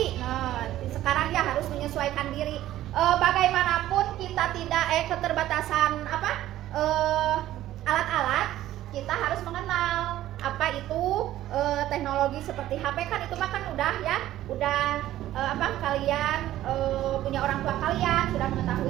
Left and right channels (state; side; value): quieter; left; 13.8 dB